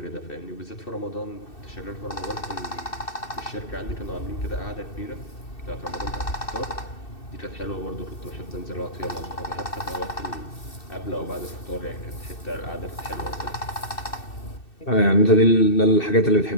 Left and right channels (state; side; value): late; right; 2.6 ms